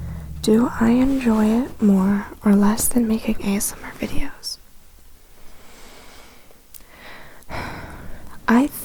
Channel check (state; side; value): identical; both; correlation 1.00